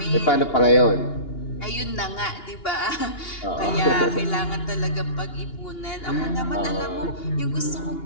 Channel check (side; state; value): right; late; 2.8 ms